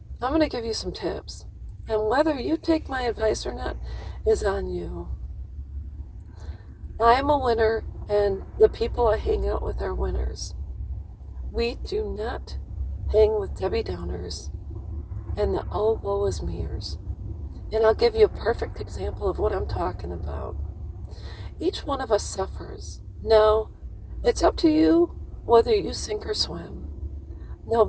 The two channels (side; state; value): both; identical; correlation 1.00